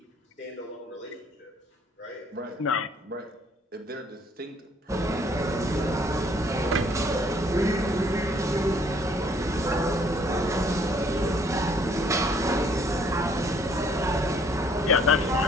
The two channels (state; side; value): normal; both; correlation 0.62